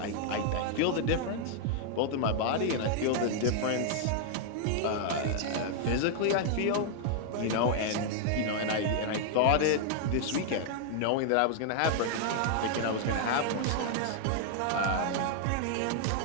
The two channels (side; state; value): both; different; correlation 0.00